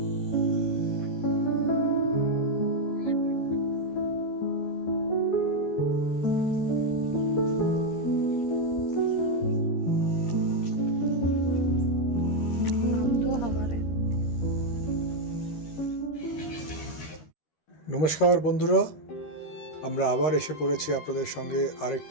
বন্ধুরা, আমরা আবার এসে পড়েছি আপনাদের সঙ্গে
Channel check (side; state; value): right; late; 13 ms